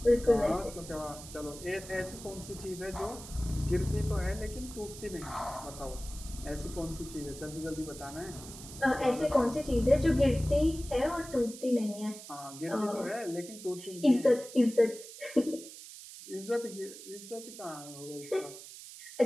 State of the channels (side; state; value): right; noise; hiss, 14 dB below the sound